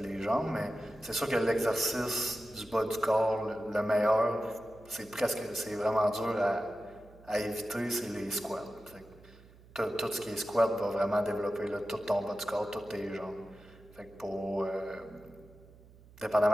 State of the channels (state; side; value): noise; right; hum, 23 dB below the sound